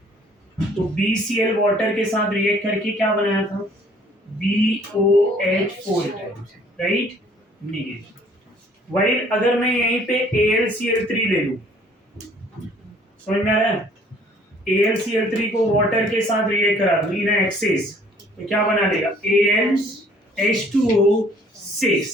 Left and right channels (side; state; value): both; normal; correlation 0.57